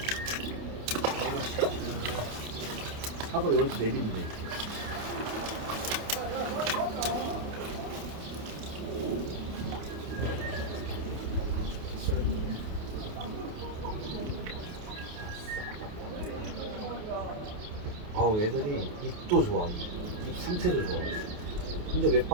그렇지. 하고 여기서 내리면 돼. 아우 애들이 입도 좋아. 입 상태도 좋아. 근데 왜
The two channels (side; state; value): left; late; 28 ms